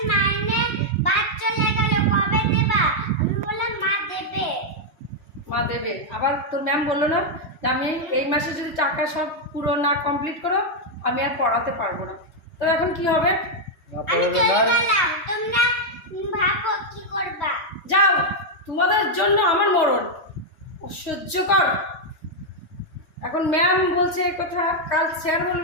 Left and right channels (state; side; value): late; right; 3.2 ms